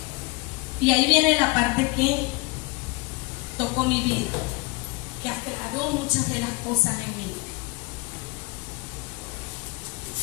Y ahí viene la parte que tocó mi vida, que aclaró muchas de las cosas en mí.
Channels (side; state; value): right; quieter; 26.5 dB